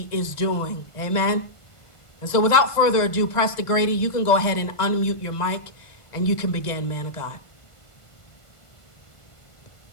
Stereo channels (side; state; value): right; late; 1.5 ms